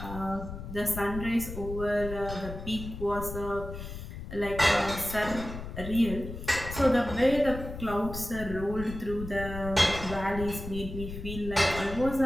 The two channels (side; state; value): left; noise; rumble, 9 dB below the sound